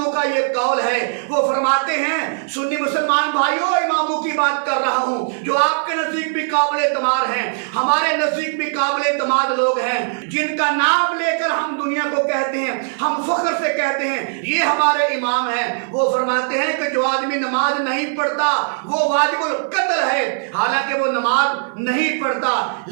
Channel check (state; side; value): silent; left; 57 dB below the other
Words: کا یہ قول ہے۔ وہ فرماتے ہیں، سنی مسلمان بھائیوں، اماموں کی بات کر رہا ہوں جو آپ کے نزدیک بھی قابل اعتماد ہیں، ہمارے نزدیک بھی قابل اعتماد لوگ ہیں، جن کا نام لے کر ہم دنیا کو کہتے ہیں، ہم فخر سے کہتے ہیں یہ ہمارے امام ہیں۔ وہ فرماتے ہیں کہ جو آدمی نماز نہیں پڑھتا وہ واجب القتل ہے۔ حالانکہ وہ نماز نہیں پڑھتا